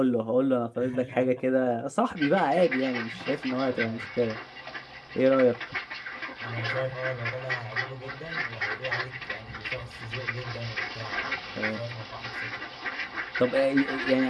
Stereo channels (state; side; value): identical; both; correlation 1.00